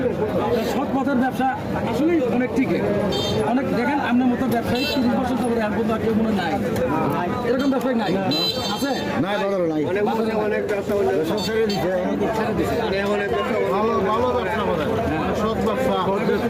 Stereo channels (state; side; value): identical; both; correlation 1.00